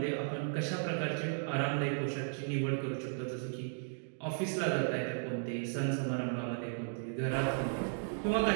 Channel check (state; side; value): silent; left; digital silence